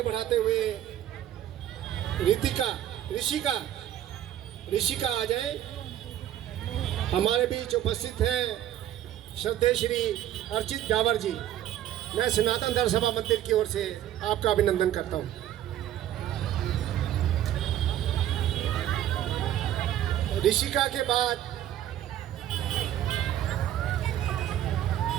बढ़ाते हुए ऋषिका आ जाए। हमारे बीच उपस्थित हैं श्रद्धेय श्री अर्चित डावर जी। मैं सनातन धर्म सभा मंदिर की ओर से आपका अभिनंदन करता हूँ। ऋषिका के बाद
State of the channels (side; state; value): left; quieter; 12.0 dB